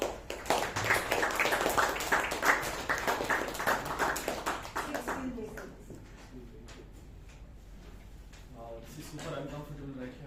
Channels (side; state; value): both; identical; correlation 1.00